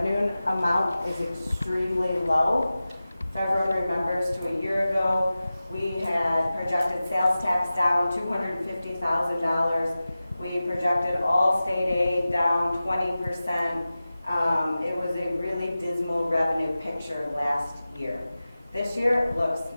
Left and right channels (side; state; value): both; inverted; correlation -0.96